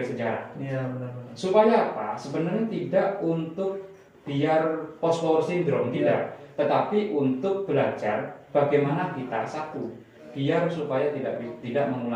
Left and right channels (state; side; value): identical; both; correlation 1.00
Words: sejarah. Benar-benar. Supaya apa? Sebenarnya tidak untuk biar post war syndrome, tidak, tetapi untuk belajar bagaimana kita satu biar supaya tidak